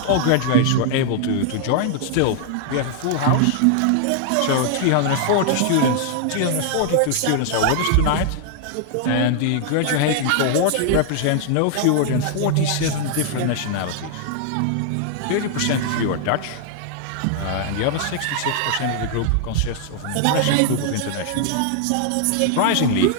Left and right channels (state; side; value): different; both; correlation 0.00